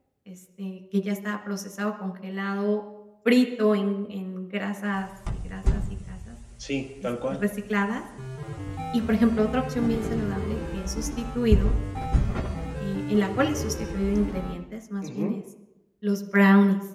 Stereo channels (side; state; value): both; identical; correlation 1.00